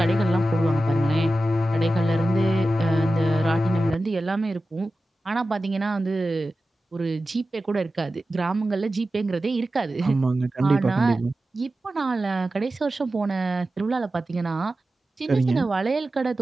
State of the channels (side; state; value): both; normal; correlation 0.94